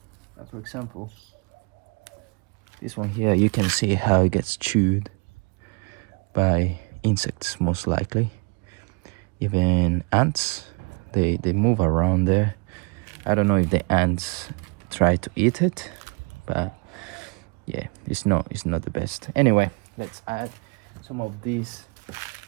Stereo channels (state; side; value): quieter; left; 32.7 dB